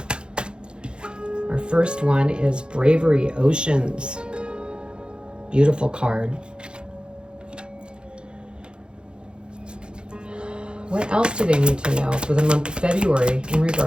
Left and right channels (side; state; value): left; late; 0.051 ms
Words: Our first one is Bravery Oceans. Beautiful card. What else do they need to know for the month of February in